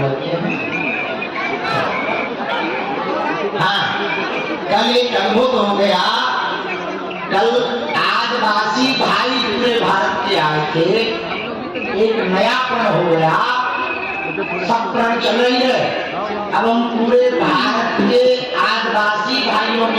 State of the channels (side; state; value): both; identical; correlation 1.00